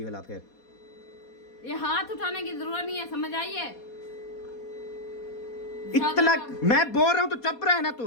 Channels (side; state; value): right; late; 4.2 ms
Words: वाला। फिर ये हाथ उठाने की जरूरत नहीं है, समझ आइए? इतना मैं बोल रहा हूँ तो चुप रहे ना तू।